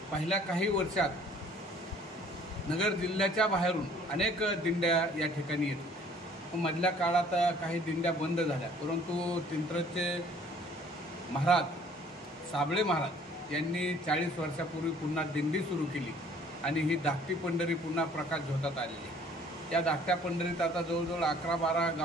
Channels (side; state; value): both; normal; correlation 0.56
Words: पहिल्या काही वर्षात नगर जिल्ह्याच्या बाहेरून अनेक दिंड्या या ठिकाणी येत होत्या। मधल्या काळात काही दिंड्या बंद झाल्या, परंतु तिंत्रचे महाराज साबळे महाराज यांनी 40 वर्षापूर्वी पुन्हा दिंडी सुरू केली आणि ही धाकटी पंढरी पुन्हा प्रकाश झोतात आलेली आहे। या धाकट्या पंढरीत आता जवळजवळ 11-12